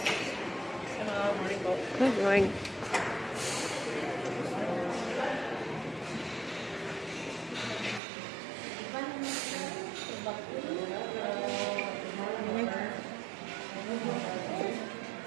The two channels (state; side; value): drops out; left; at 8.0 s